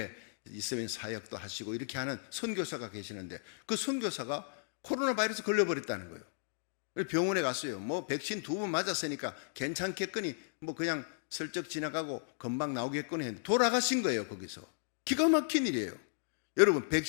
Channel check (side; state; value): right; silent; digital silence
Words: 있으면 사역도 하시고 이렇게 하는 선교사가 계시는데 그 선교사가 코로나 바이러스 걸려버렸다는 거예요. 병원에 갔어요. 뭐 백신 2번 맞았으니까 괜찮겠거니 뭐 그냥 슬쩍 지나가고 금방 나오겠거니 했는데 돌아가신 거예요. 거기서. 기가 막힌 일이에요. 여러분